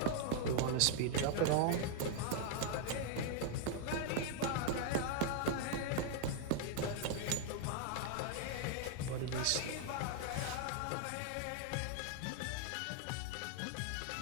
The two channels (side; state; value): both; different; correlation 0.00